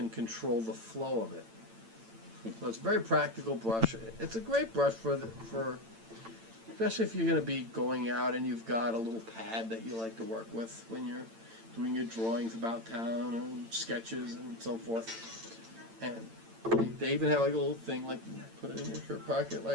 control the flow of it. So it's a very practical brush. It's a great brush for especially if you're going to be going out and you've got a little pad that you like to work with when you're doing your drawings about town and sketches and so forth. And they even have like a little thing, like you put it in your shirt pocket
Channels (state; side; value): late; left; 8.9 ms